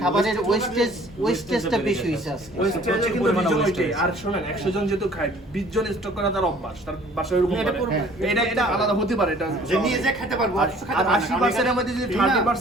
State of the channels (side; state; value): both; normal; correlation 0.53